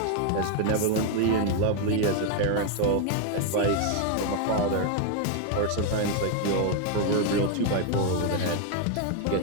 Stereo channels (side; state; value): both; different; correlation 0.01